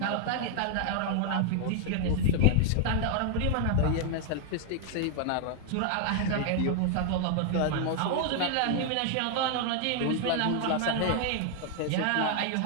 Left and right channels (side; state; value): both; different; correlation 0.00